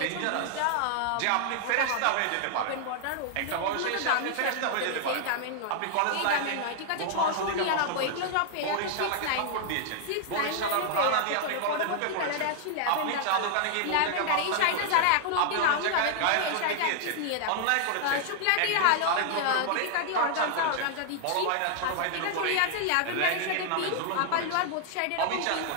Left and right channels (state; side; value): different; both; correlation 0.00